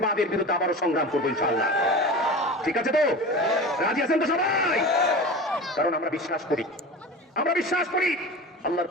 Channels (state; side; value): normal; both; correlation 0.32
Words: বিরুদ্ধে আবারও সংগ্রাম করবো ইনশাআল্লাহ। ঠিক আছে তো? রাজি আছেন তো সবাই? কারণ আমরা বিশ্বাস করি, আল্লাহর